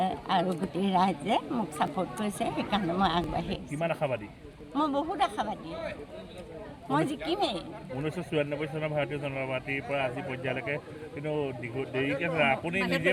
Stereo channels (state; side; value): identical; both; correlation 1.00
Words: আৰু গোটেই ৰাইজে মোক ছাপোৰ্ট কৰিছে। সেইকাৰণে মই আগবাঢ়ি আহিছোঁ। কিমান আশাবাদী? মই বহুত আশাবাদী, মই জিকিমেই। 1994 চনৰ ভাৰতীয় জনতা পাৰ্টীৰ পৰা আজি পৰ্যায়লৈকে কিন্তু দেৰিকৈ আপুনি নিজে